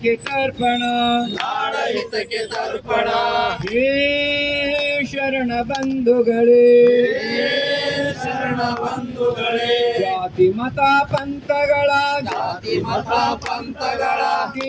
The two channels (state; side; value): identical; both; correlation 1.00